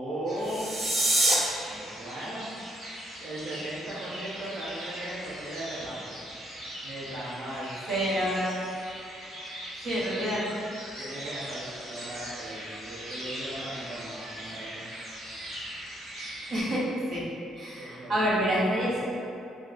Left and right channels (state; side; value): normal; both; correlation 0.69